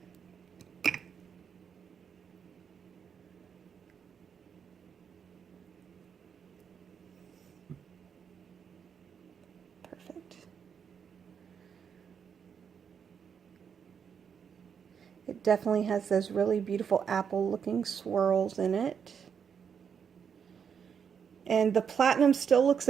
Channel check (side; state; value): left; quieter; 7.2 dB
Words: Perfect. It definitely has those really beautiful apple looking swirls in it. And the platinum still looks